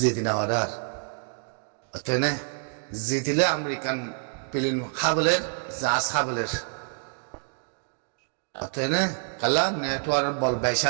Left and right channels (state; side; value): silent; left; 59 dB below the other